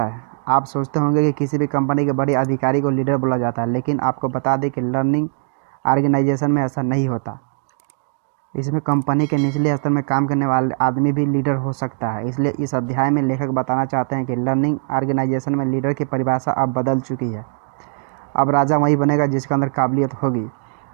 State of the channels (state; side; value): silent; left; digital silence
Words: है? आप सोचते होंगे कि किसी भी कंपनी के बड़े अधिकारी को लीडर बोला जाता है, लेकिन आपको बता दें कि लर्निंग ऑर्गेनाइजेशन में ऐसा नहीं होता। इसमें कंपनी के निचले स्तर में काम करने वाले आदमी भी लीडर हो सकता है। इसलिए इस अध्याय में लेखक बताना चाहते हैं कि लर्निंग ऑर्गेनाइजेशन में लीडर की परिभाषा अब बदल चुकी है। अब राजा वही बनेगा जिसके अंदर काबिलियत होगी।